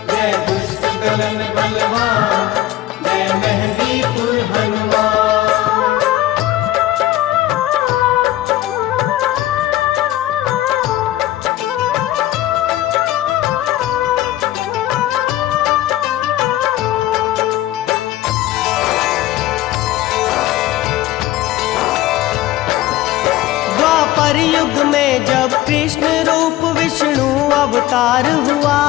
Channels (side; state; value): right; quieter; 15.1 dB